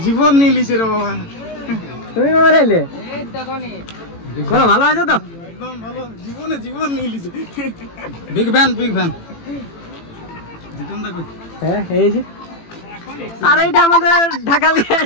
জীবন নিয়ে লিছে রে বাবা। তুমি বাবা নাইলে বলো ভালো আছো তো? একদম ভালো, জীবনে জীবন নিয়ে লিছে। Big fan big fan. Jitun দা কই? হ্যাঁ এই যে। আর এইটা আমাদের ঢাকালি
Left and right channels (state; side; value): late; right; 18 ms